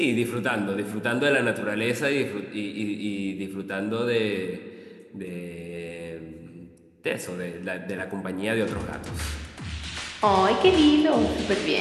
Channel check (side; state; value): both; identical; correlation 1.00